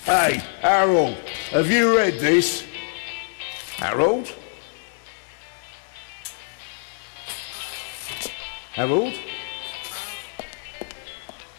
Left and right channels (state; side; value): silent; right; 57 dB below the other